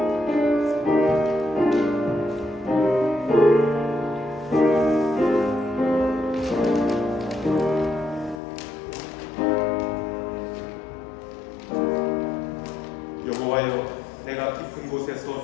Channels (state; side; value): drops out; right; at 8.4 s